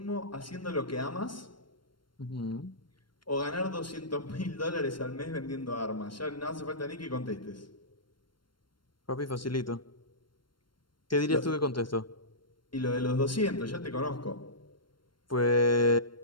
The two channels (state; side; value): late; right; 0.72 ms